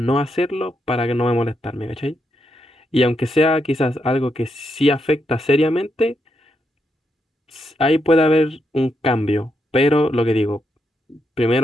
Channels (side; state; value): both; normal; correlation 0.81